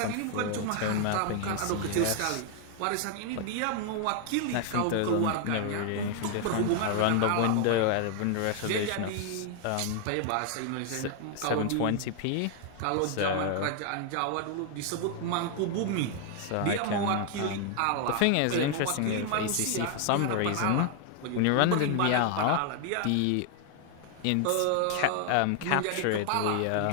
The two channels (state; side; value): different; both; correlation 0.00